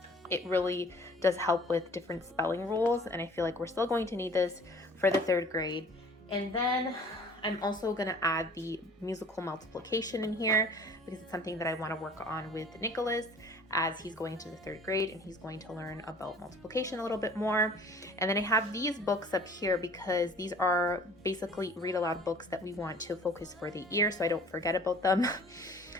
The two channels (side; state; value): both; normal; correlation 0.50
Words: it really does help with different spelling rules, and I feel like we're still going to need this for the 3rd grade. And then I'm also going to add the musical multiplication in here because it's something that I want to work on with Nicholas as he's going to the 3rd grade and he's going to learn about multiplication a little bit more. And then I have these books up here because these are basically read aloud books that we want to focus for the year so I don't forget about them.